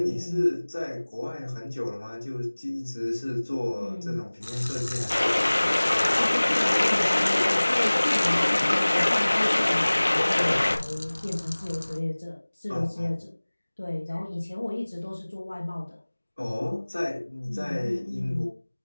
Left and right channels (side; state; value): both; inverted; correlation -1.00